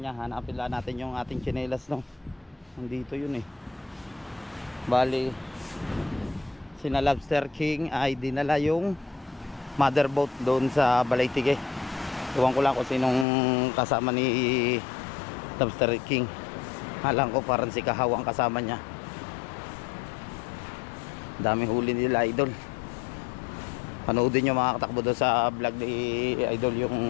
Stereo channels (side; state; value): right; drops out; at 13.2 s